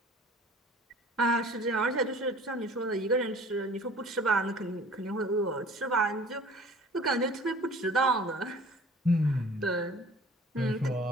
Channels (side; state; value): both; normal; correlation 0.47